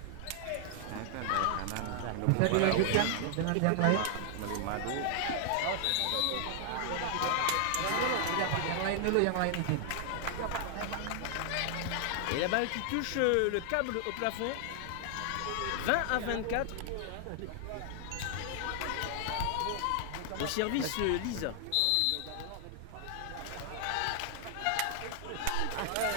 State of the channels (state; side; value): different; both; correlation 0.00